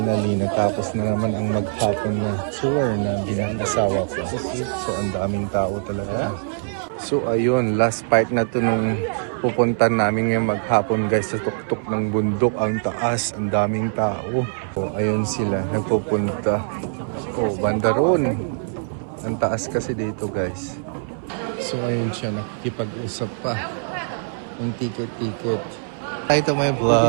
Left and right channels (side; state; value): left; silent; 59 dB below the other